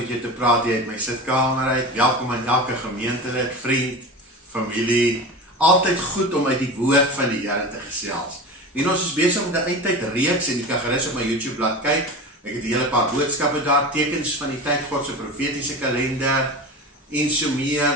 jou te praat hier uit my sitkamer uit. Welkom aan elke gemeentelid, vriend, familie. Altyd goed om uit die woord van die Here te gesels. En ons is besig met 'n eindtyd reeks en jy kan gerus op my YouTube bladsy kyk. Ek het 'n hele paar boodskappe daar, tekens van die tyd, God se profetiese kalender en so meer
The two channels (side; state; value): both; normal; correlation 0.29